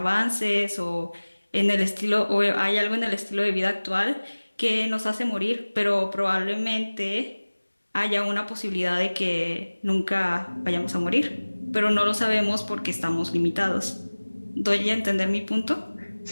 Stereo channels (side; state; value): both; inverted; correlation -1.00